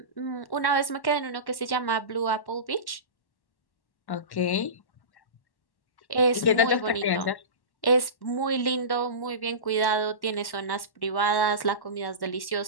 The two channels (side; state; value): right; late; 1.1 ms